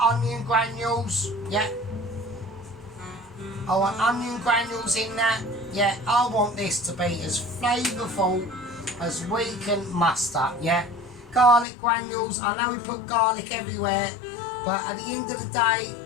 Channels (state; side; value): drops out; right; at 11.7 s